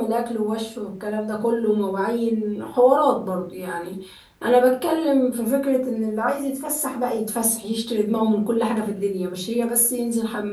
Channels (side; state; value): both; identical; correlation 1.00